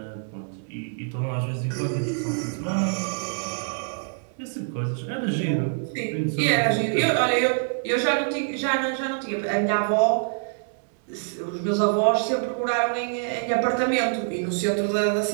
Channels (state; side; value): silent; left; digital silence